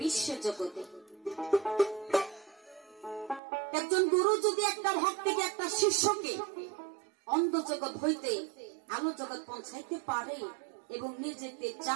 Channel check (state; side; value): drops out; left; at 3.4 s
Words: বিশ্ব জগতে। একজন গুরু যদি একটা ভক্তকে, একটা শিষ্যকে অন্ধ জগৎ হইতে আলো জগৎ পৌঁছাইতে পারে এবং নিয়ে যেতে